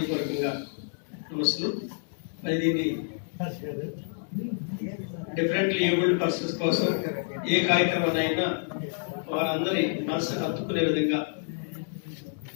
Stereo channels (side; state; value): right; silent; digital silence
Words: నమస్సులు. మరి దీన్ని డిఫరెంట్లీ ఏబుల్డ్ పర్సన్స్ కోసం ఏ కార్యక్రమాన్ని అయినా వారందరి మనసు హత్తుకునే విధంగా